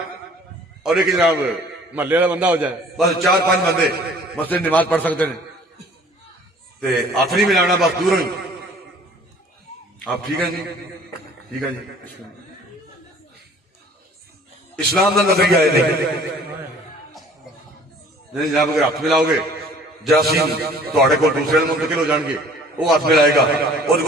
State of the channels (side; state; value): both; normal; correlation 0.52